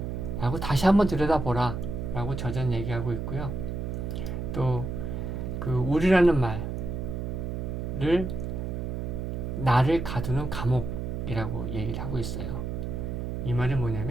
라고 다시 한번 들여다보라 라고 저자는 얘기하고 있고요. 또 우리라는 말을 나를 가두는 감옥이라고 얘기를 하고 있어요. 이 말은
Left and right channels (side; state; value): right; noise; hum, 4 dB below the sound